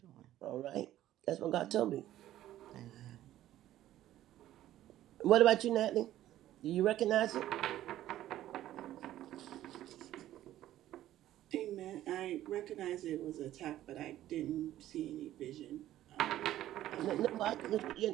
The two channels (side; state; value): left; quieter; 13.4 dB